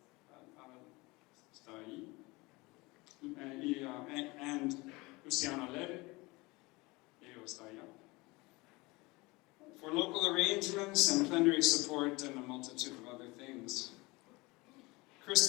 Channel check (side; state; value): right; quieter; 23.5 dB